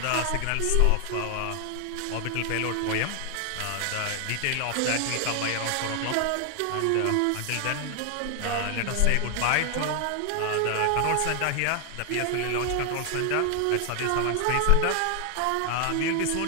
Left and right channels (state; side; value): different; both; correlation 0.00